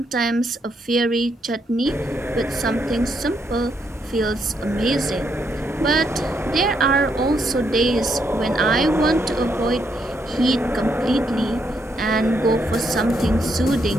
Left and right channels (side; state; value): both; normal; correlation 0.76